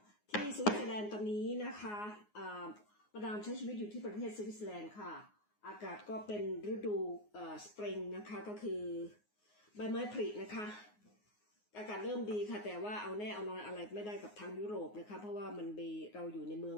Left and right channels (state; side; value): late; right; 9.6 ms